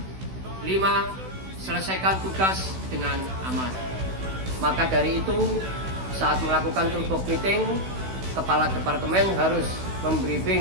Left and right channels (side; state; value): left; late; 16 ms